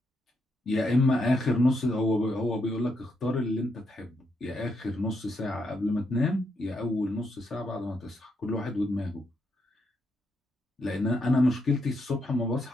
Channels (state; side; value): normal; both; correlation 0.79